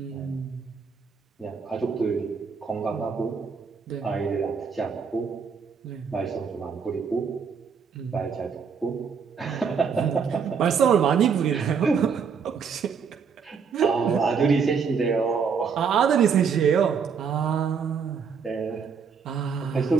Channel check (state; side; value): quieter; left; 6.1 dB